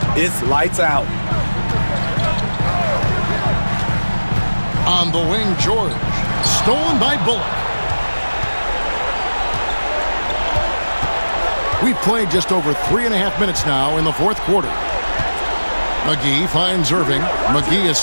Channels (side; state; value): both; inverted; correlation -1.00